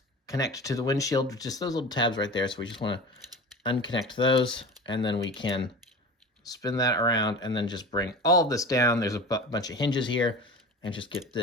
connect to the windshield, just those little tabs right there. So we just want to unconnect those, and then we can spin that around and then just bring all of this down. There's a bunch of hinges here, and just get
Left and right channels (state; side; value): normal; both; correlation 0.34